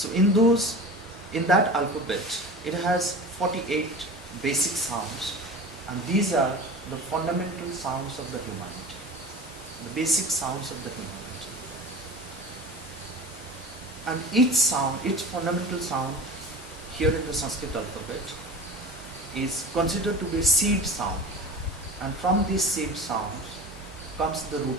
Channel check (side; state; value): both; normal; correlation 0.34